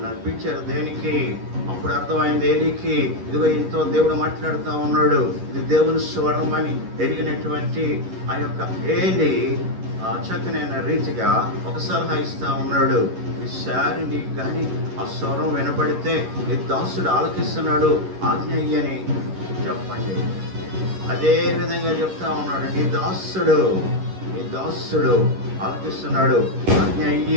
అనిపించారు దేనికి? అప్పుడు అర్థమైంది ఏలికి, ఇదిగో ఇంతో దేవుడు మాట్లాడుతూ ఉన్నాడు, ఇది దేవుని స్వరం అని ఎరిగినటువంటి ఆ యొక్క ఏలి చక్కనైన రీతిగా ఒక సలహా ఇస్తా ఉన్నాడు. ఈసారి నీకు కానీ ఆ స్వరం వినబడితే నీ దాసుడు ఆలకిస్తున్నాడు, ఆజ్ఞ అయ్యని చెప్పండి. అదే విధంగా చెప్తా ఉన్నాడు, నీ దాసుడు ఆలకిస్తున్నాడు, ఆజ్ఞ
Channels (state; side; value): late; left; 11 ms